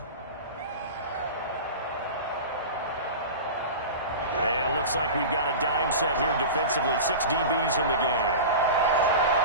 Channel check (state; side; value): inverted; both; correlation -0.30